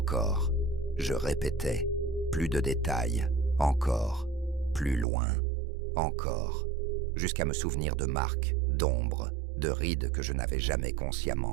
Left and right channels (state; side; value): drops out; left; at 5.1 s